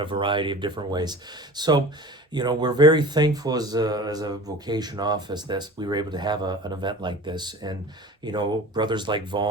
variety of different ways. So, we're very thankful as a vocation office that we were able to have an event like this. And, brothers like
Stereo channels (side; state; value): both; normal; correlation 0.39